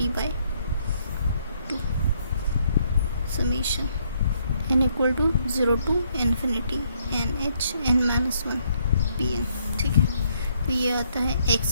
summation n equal to 0 to infinity n h n minus 1 p n. ठीक है, तो ये आता है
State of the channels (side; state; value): both; inverted; correlation -0.71